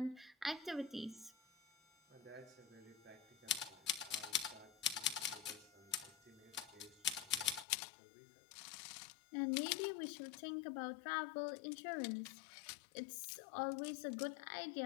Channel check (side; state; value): right; drops out; at 7.7 s